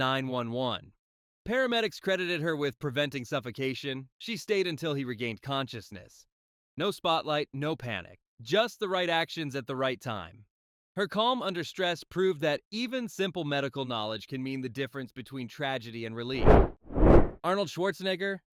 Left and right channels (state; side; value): identical; both; correlation 1.00